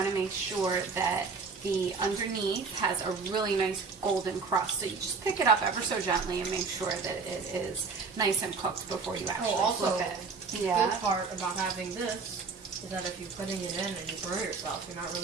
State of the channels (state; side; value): quieter; left; 4.7 dB